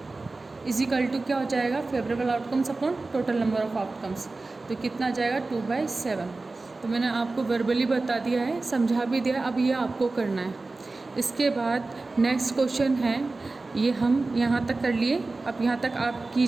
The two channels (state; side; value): quieter; left; 3.5 dB